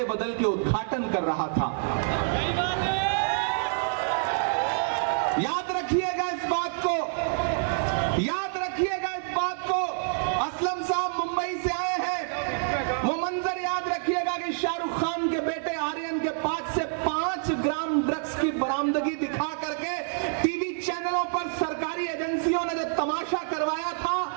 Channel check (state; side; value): silent; left; 60 dB below the other